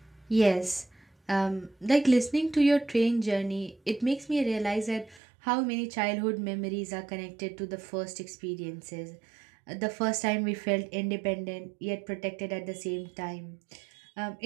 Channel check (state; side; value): drops out; left; at 5.2 s